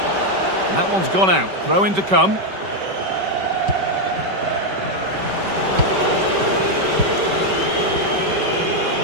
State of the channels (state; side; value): late; left; 5.2 ms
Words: And that one's gone out. Throw in to come.